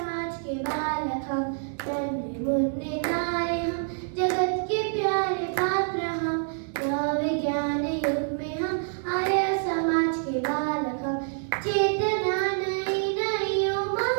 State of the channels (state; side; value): silent; left; digital silence